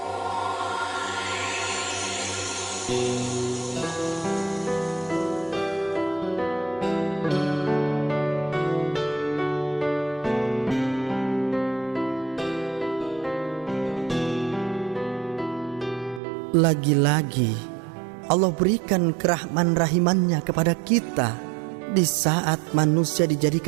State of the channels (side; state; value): left; drops out; at 16.2 s